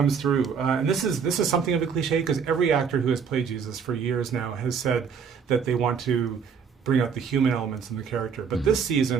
through, and this is something of a cliche, because every actor who has played Jesus for years now has said that they want to bring out the human elements in the character. But this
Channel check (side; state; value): left; quieter; 6.4 dB